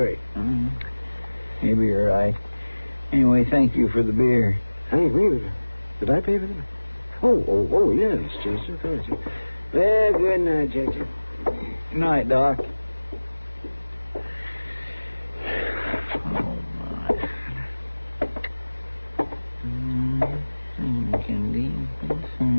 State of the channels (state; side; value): inverted; both; correlation -1.00